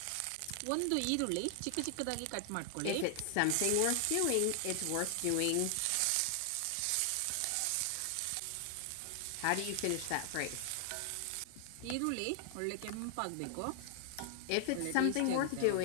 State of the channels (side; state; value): both; different; correlation 0.00